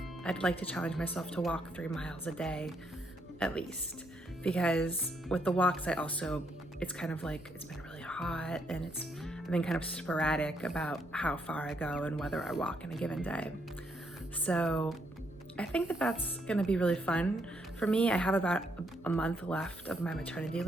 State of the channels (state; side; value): normal; both; correlation 0.75